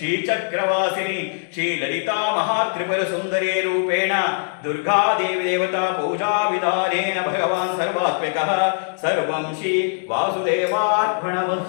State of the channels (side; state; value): right; silent; digital silence